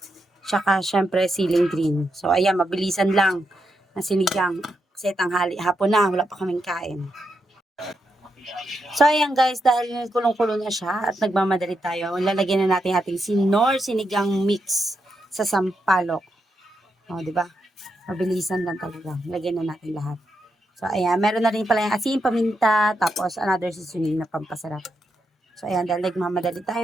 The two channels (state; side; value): normal; both; correlation 0.83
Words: Tsaka, siyempre, siling green. So, ayan, mabilisan lang na sinigang. Kasi tanghali, hapon na, wala pa kaming kain. So, ayan guys, dahil kulong-kulo na siya at nagmamadali tayo, lalagyan na natin ating sinor sinigang mix sa sampalok. O, di ba? Mabilisan lang talaga. Lagyan na natin lahat. So, ayan. Meron na rin pala yung asin, paminta, tapos another seasoning na pampasarap. So, ayan. Dahil nagmamadali